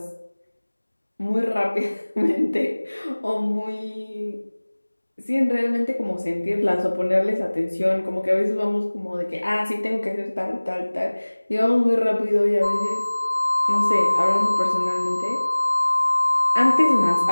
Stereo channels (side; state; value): both; inverted; correlation -1.00